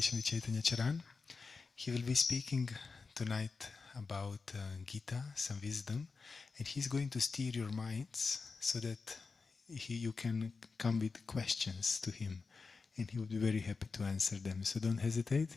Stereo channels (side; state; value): right; quieter; 4.5 dB